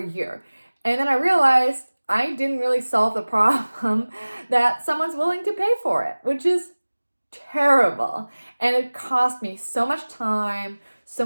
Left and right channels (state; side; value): inverted; both; correlation -1.00